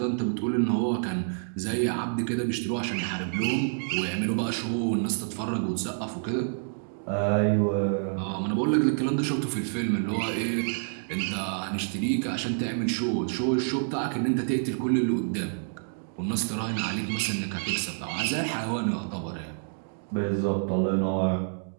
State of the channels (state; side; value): silent; left; digital silence